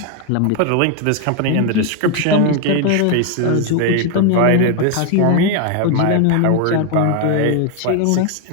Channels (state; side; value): different; both; correlation 0.01